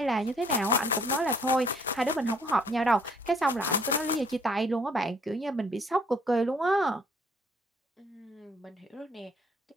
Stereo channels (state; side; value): normal; both; correlation 0.62